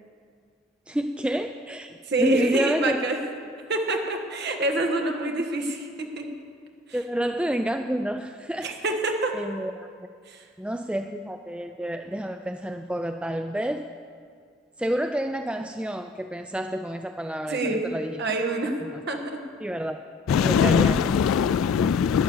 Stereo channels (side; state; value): both; normal; correlation 0.55